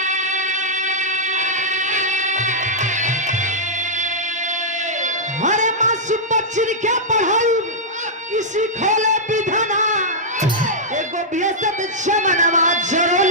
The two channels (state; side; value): normal; both; correlation -0.09